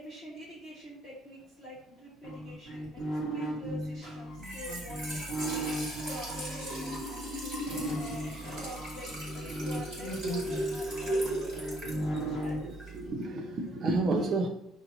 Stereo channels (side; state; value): both; normal; correlation 0.66